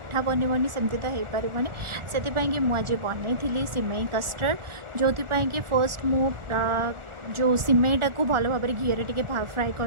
बनबनी सेमती तो हो पारबनी से मुझे बनई सिमई कस्टर्ड जो कि फर्स्ट मु जो सिमेटा को भल भाव घी टे फ्राए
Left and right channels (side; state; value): left; late; 1.4 ms